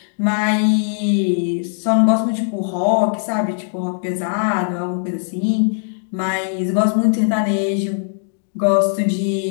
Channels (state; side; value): silent; right; digital silence